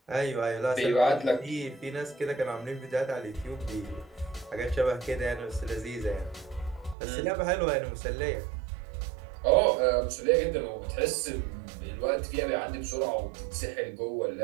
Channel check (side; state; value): left; drops out; at 7.0 s